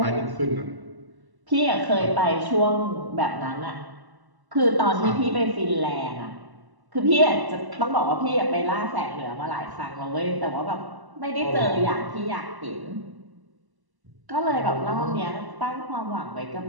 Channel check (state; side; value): late; left; 1.1 ms